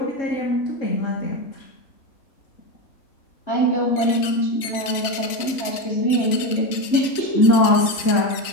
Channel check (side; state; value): right; late; 3.9 ms